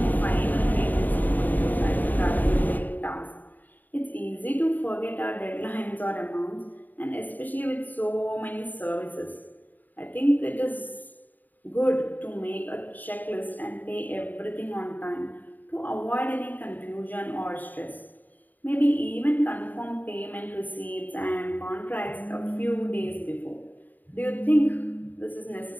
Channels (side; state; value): right; late; 0.086 ms